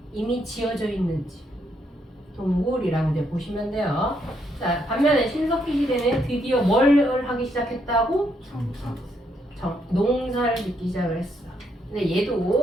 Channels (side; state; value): both; normal; correlation 0.75